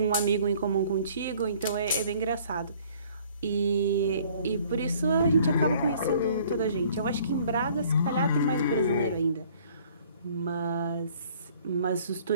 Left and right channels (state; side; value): inverted; both; correlation -0.56